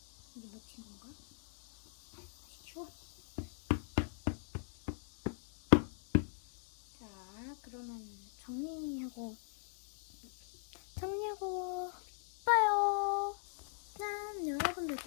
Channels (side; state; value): right; silent; digital silence